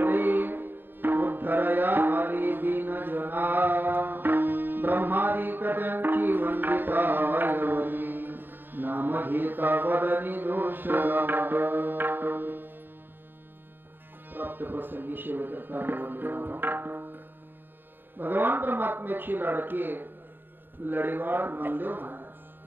उद्धरया आली दीन जना ब्रह्मादिक त्यांची वंदिता वरी नाम घेता वदनी दोष प्राप्त प्रसंगी शिवकर्ता भगवान परमात्म्याची लाडके लढीवाळ नामदेव महाराज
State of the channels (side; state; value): left; late; 0.095 ms